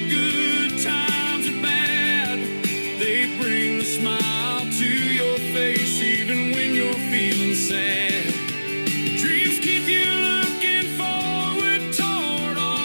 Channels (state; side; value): inverted; both; correlation -1.00